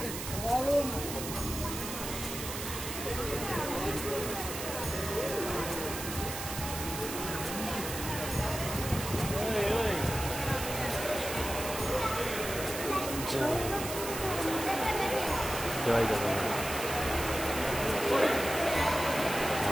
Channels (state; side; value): noise; right; hiss, 6 dB below the sound